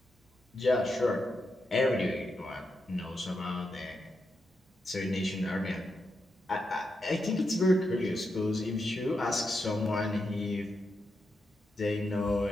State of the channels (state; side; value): normal; both; correlation 0.85